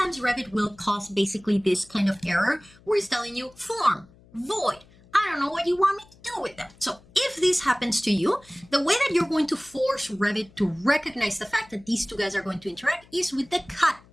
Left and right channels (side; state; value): left; noise; hum, 27 dB below the sound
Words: Revit will cause basically this kind of error where it's telling you form, void. I don't know what you want me to do with them. So if this happens to you, the way that you're going to force Revit to recognize the fact that these two guys are going to interact is with the cut